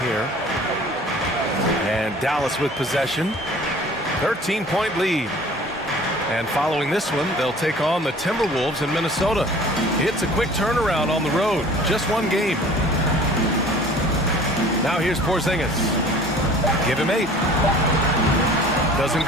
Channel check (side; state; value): both; normal; correlation 0.47